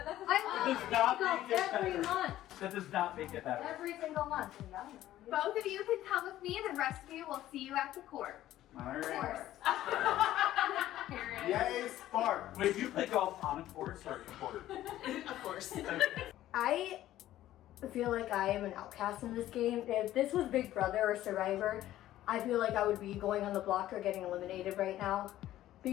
Does not golf make it every better. month. That does not make it better. Every single month. Both of you can come with me, and the rest of you will see you at the court. Alright. Yay, Spark! Wait, do you play golf on a course or a court? Of course. I feel like I am an outcast in this game. If this was Big Brother or Survivor, I feel like I would be going on the block or getting eliminated right now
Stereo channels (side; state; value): right; quieter; 13.8 dB